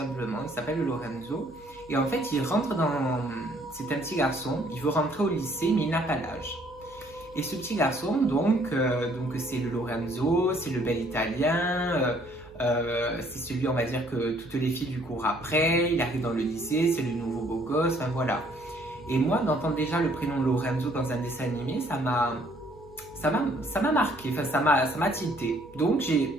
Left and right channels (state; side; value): noise; right; hum, 24 dB below the sound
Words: il s'appelle Lorenzo. Et en fait, il rentre dans... C'est un petit garçon, il veut rentrer au lycée, mais il n'a pas l'âge. Et ce petit garçon, donc c'est le Lorenzo, c'est le bel italien, c'est celui, on va dire, que toutes les filles lui courent après, il arrive dans le lycée, c'est le nouveau beau gosse, enfin voilà. Et moi, d'entendre déjà le prénom Lorenzo dans un dessin animé, ça m'a marqué, enfin ça m'a tilté. Donc j'ai